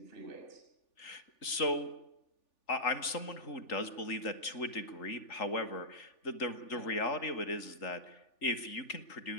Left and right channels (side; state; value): right; late; 3.4 ms